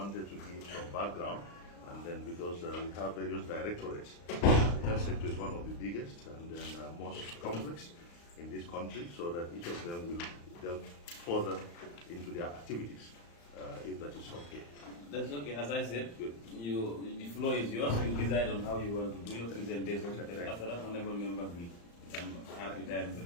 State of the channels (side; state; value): right; late; 35 ms